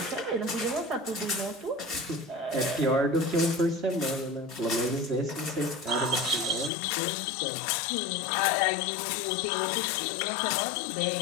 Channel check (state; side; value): drops out; right; at 6.7 s